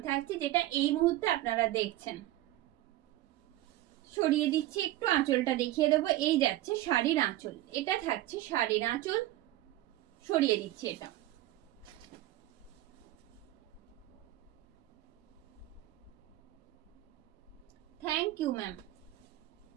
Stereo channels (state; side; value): quieter; left; 15.6 dB